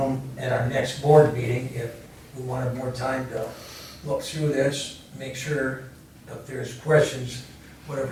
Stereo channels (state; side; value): identical; both; correlation 1.00